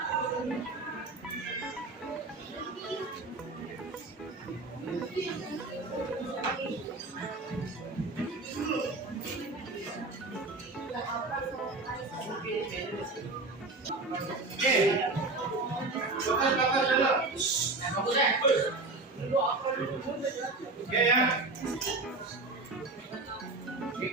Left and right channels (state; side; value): quieter; left; 3.4 dB